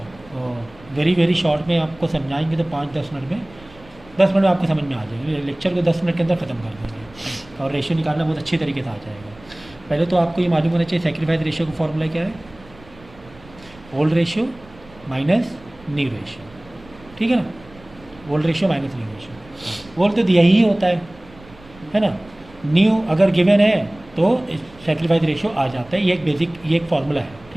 very very short में आपको समझाएंगे तो 5-10 मिनट में 10 मिनट में आपको समझ में आ जाएगी। लेक्चर को 10 मिनट के अंदर ख़त्म कर देंगे और रेशियो निकालना बहुत अच्छी तरीके से आ जाएगा। पहले तो आपको ये मालूम होना चाहिए सेक्रीफाइस रेशियो का फॉर्मूला क्या है, old ratio minus new ratio. ठीक है ना, old ratio minus new ratio. Old तो दिया ही होता है ना। न्यू अगर गिवन है तो सेक्रीफाइस रेशियो आ जाता है। ये एक बेसिक, ये एक फॉर्मूला है।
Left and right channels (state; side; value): noise; right; rumble, 23 dB below the sound